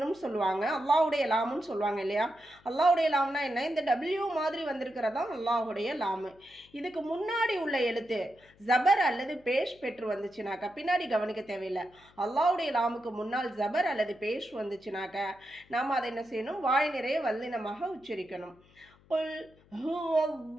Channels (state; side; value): noise; left; hum, 29 dB below the sound